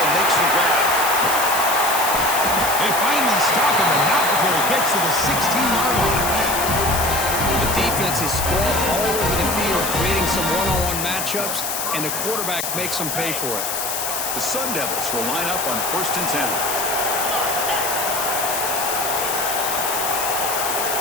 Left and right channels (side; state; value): left; noise; hiss, 3 dB below the sound